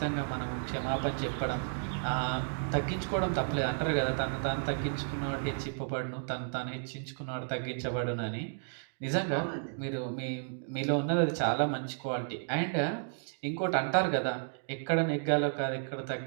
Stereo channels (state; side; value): silent; left; digital silence